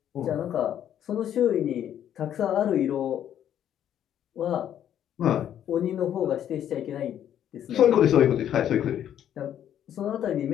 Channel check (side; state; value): right; quieter; 10.3 dB